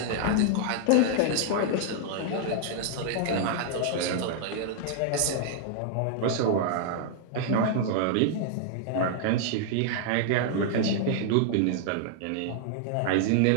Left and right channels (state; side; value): different; both; correlation -0.01